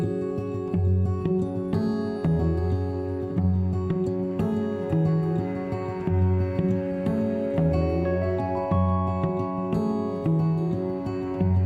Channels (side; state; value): both; identical; correlation 1.00